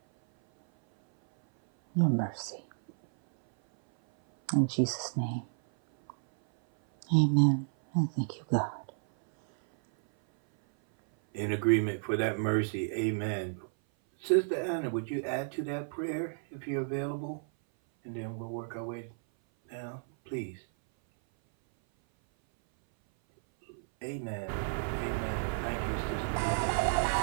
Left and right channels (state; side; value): silent; left; 57 dB below the other